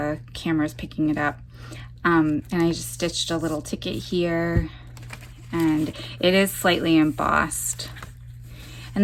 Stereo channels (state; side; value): identical; both; correlation 1.00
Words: camera's picking it up. And I just stitched a little ticket here, and it is slightly embossed.